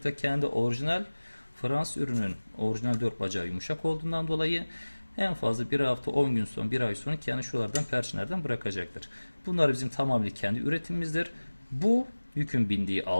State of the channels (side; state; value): both; inverted; correlation -1.00